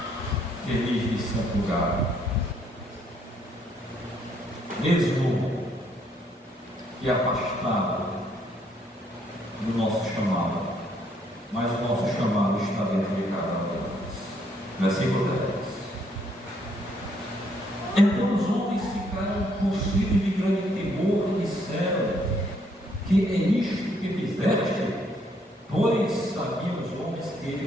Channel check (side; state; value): both; normal; correlation 0.69